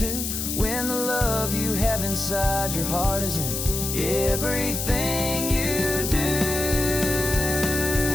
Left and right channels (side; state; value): left; noise; hiss, 3 dB below the sound